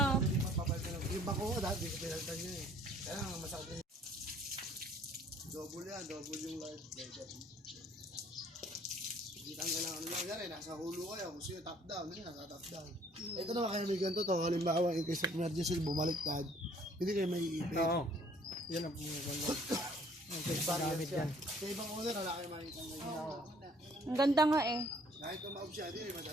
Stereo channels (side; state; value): both; normal; correlation 0.59